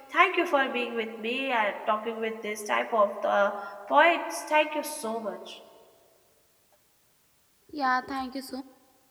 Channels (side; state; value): both; identical; correlation 1.00